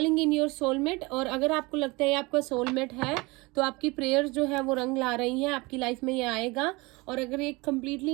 इन योर सोलमेट, और अगर आपको लगता है आपका सोलमेट है तो आपकी प्रेयर्स जो है वो रंग ला रही हैं, आपकी लाइफ में ये आएगा। और अगर एक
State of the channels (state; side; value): quieter; left; 24.5 dB